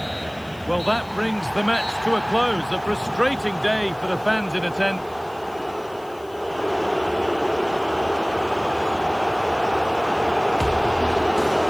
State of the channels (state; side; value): noise; left; hiss, 26 dB below the sound